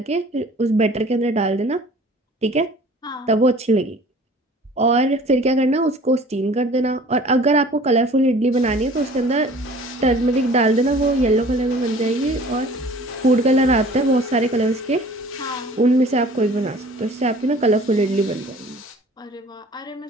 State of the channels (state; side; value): normal; both; correlation 0.48